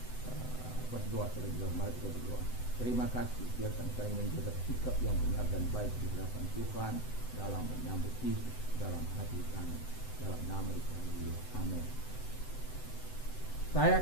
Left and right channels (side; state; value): right; late; 7.9 ms